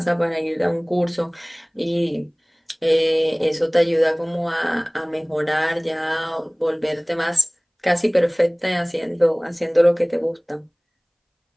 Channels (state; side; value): identical; both; correlation 1.00